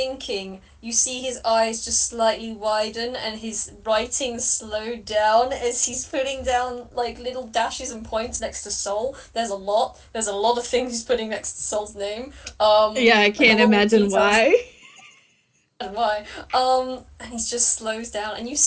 you see his eyes just slightly widen and his writing slow down as he's putting down like little dashes and points next to soul. There's a lot. There's a lot of things he's putting next to soul's name. Yeah, I Like a can't lot of imagine details why. and why. And he just slows down, and you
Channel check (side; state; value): both; identical; correlation 1.00